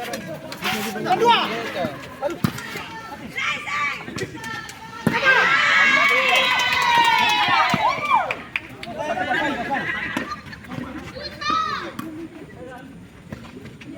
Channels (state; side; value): identical; both; correlation 1.00